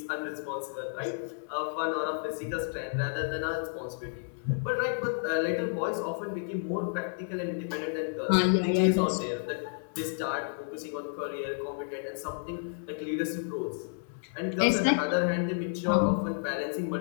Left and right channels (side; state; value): right; silent; digital silence